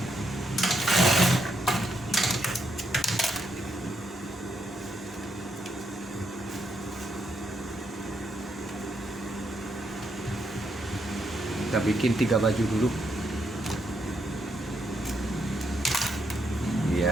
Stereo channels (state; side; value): normal; both; correlation 0.78